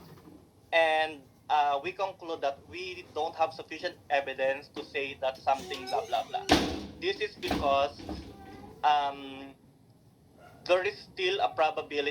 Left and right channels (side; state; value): both; identical; correlation 1.00